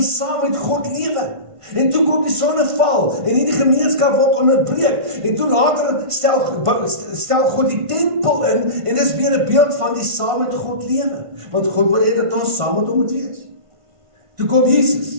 saam met God lewe. En toe kom die sonneval, en hierdie gemeenskap word onderbreek, en toe later stel God die tempel in, en dis weer 'n beeld van die saam met God lewe, want God wil hê dat ons saam met hom moet wees. Toe kom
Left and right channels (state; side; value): late; left; 1.5 ms